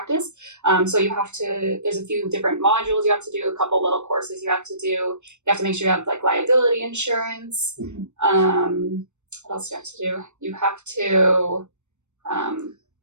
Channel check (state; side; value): late; left; 0.83 ms